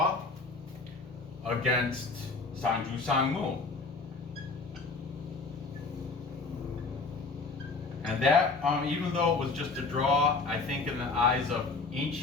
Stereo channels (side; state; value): right; quieter; 4.0 dB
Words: against Seongnam. And that, even though it was just a draw, I think in the eyes of